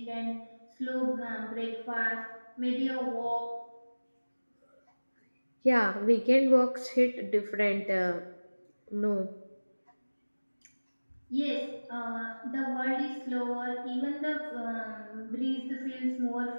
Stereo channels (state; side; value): inverted; both; correlation -1.00